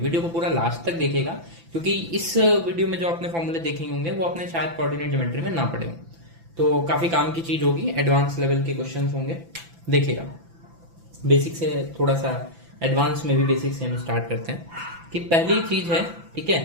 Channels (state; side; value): late; left; 6.0 ms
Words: को पूरा लास्ट तक देखेगा, क्योंकि इस वीडियो में जो आपने फॉर्मूले देखेंगे होंगे वो आपने शायद कोऑर्डिनेट ज्योमेट्री में ना पढ़े हों, तो काफी काम की चीज होगी। एडवांस लेवल के क्वेश्चन होंगे, देखिएगा। बेसिक से थोड़ा सा एडवांस में भी बेसिक से हम स्टार्ट करते हैं कि पहली चीज है, ठीक है,